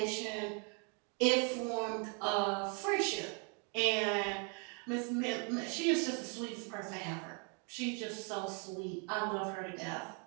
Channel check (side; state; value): left; quieter; 37.6 dB